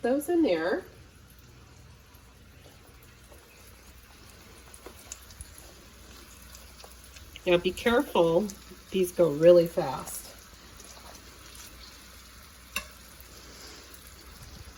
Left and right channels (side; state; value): both; identical; correlation 1.00